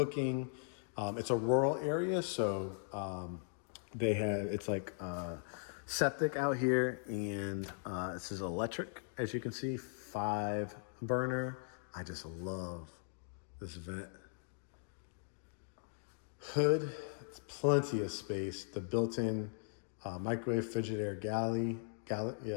It's a rural area, so it's like septic out here, and this is electric, as you can see, 5 burner. I just love this vent hood. It's plenty of space. The built-in microwave Frigidaire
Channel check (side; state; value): right; silent; digital silence